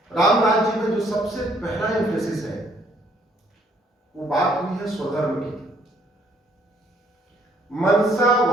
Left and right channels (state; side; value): normal; both; correlation 0.65